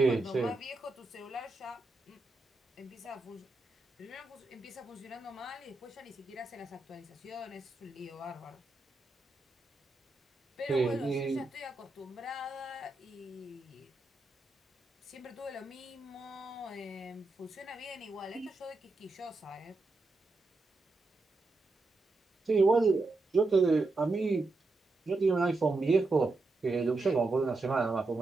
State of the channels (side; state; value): left; quieter; 3.2 dB